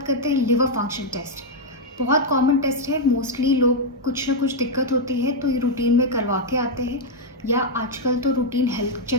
करते हैं लिवर फंक्शन टेस्ट। बहुत कॉमन टेस्ट है। मोस्टली लोग कुछ ना कुछ दिक्कत होती है तो ये रूटीन में करवा के आते हैं, या आजकल तो रूटीन हेल्थ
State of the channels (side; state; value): both; normal; correlation -0.01